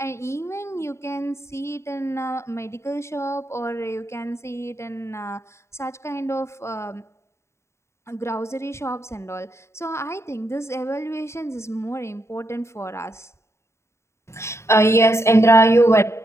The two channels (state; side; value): late; right; 0.13 ms